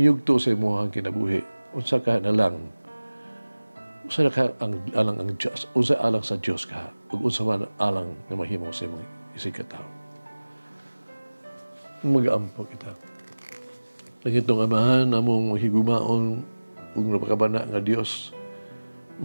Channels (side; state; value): both; inverted; correlation -1.00